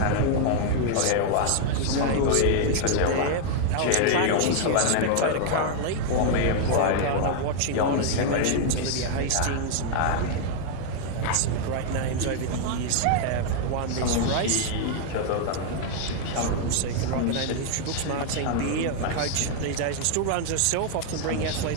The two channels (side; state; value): both; different; correlation 0.00